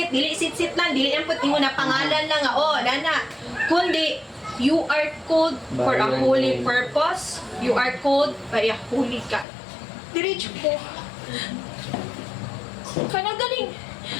sit-sit lang, dili ang puti mo na pangalan lang, nana. Kundi, you are called for a holy purpose. You are called by a holy God. Diretso po. Kanang galing,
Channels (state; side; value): drops out; right; at 9.5 s